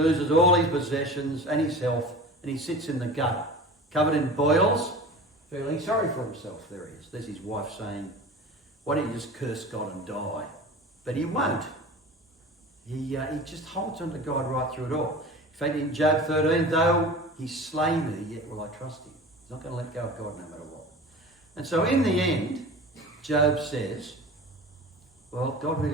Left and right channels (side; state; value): both; normal; correlation 0.36